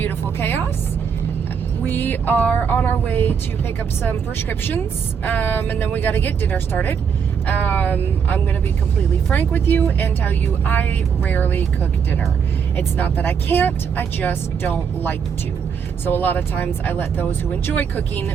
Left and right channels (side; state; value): left; quieter; 6.8 dB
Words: chaos. We are on our way to pick up some prescriptions, and then we got to get dinner started. I'm going to be completely frank with you and tell you I rarely cook dinner. It's not that I can't, I just don't like to. So a lot of times I let those who enjoy cooking